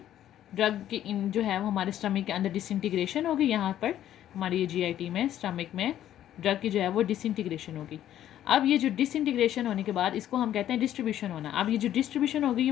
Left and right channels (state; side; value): quieter; right; 11.7 dB